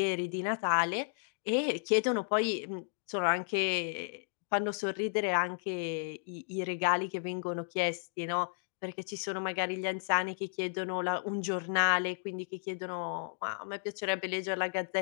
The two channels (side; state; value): right; silent; digital silence